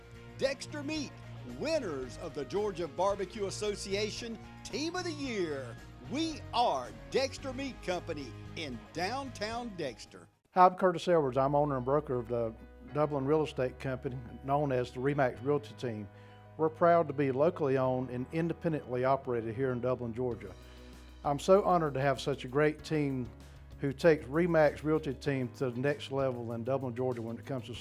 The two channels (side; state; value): both; identical; correlation 1.00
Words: Dexter Meat, winners of the Georgia Barbecue Association Team of the Year. We are Dexter Meat Company in downtown Dexter. Hi, I'm Curtis Edwards. I'm owner and broker of the Dublin real estate company known as the RE/MAX Realty Team. We're proud to be locally owned and independently operated here in Dublin, Georgia. I'm so honored to have such a great team who takes RE/MAX Realty Team to the next level in Dublin, Georgia when it comes to